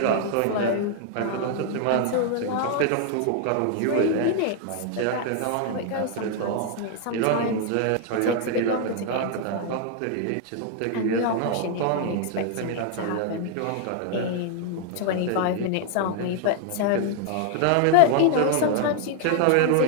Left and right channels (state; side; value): different; both; correlation 0.00